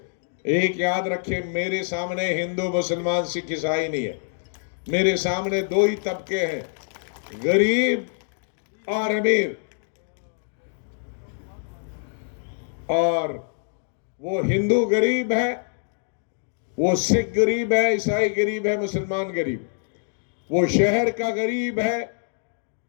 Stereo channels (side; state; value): right; silent; digital silence